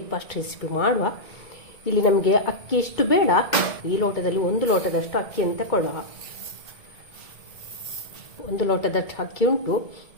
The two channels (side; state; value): right; late; 2.2 ms